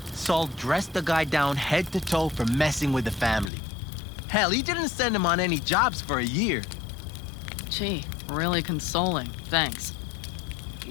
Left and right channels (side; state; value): right; drops out; at 3.5 s